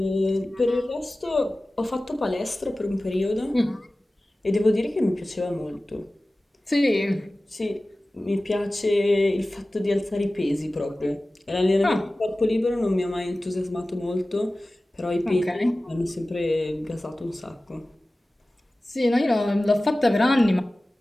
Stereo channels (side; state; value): both; normal; correlation 0.97